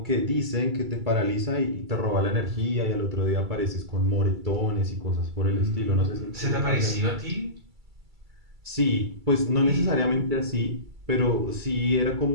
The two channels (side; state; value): left; late; 2.3 ms